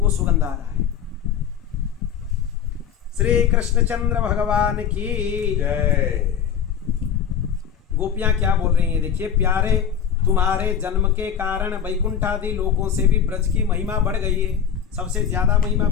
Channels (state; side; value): quieter; right; 8.3 dB